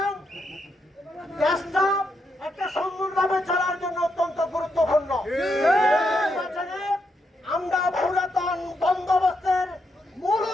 দেশটা একটা সুন্দরভাবে চলার জন্য অত্যন্ত গুরুত্বপূর্ণ। নির্বাচনে আমরা পুরাতন বন্দোবস্তের মূল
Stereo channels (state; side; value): normal; both; correlation 0.80